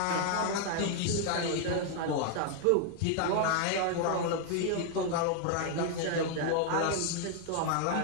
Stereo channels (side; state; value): both; different; correlation 0.00